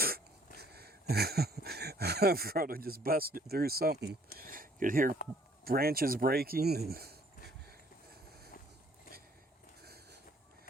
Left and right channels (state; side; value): normal; both; correlation 0.60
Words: Frodo just busted through something. You could hear branches breaking and